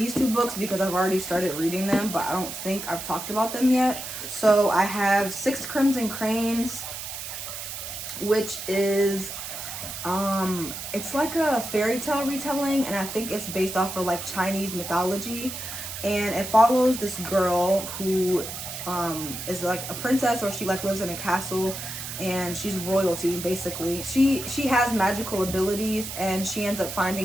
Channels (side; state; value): right; noise; hiss, 8 dB below the sound